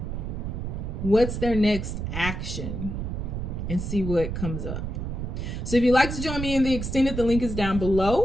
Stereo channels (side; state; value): right; noise; rumble, 4 dB below the sound